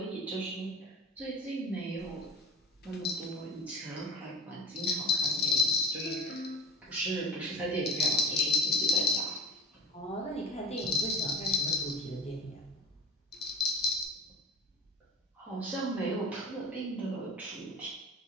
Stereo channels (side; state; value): both; normal; correlation 0.36